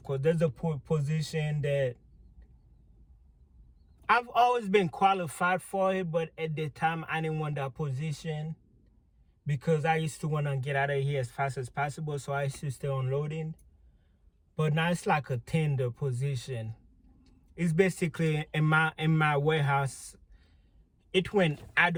course. There's a position that I've always been qualified for it, but at the time I didn't want that position because I used to want to get out of here as fast as possible, so I used to stay unloading. But now it's like a tender position. It's basically in my warehouse. It went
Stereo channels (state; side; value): identical; both; correlation 1.00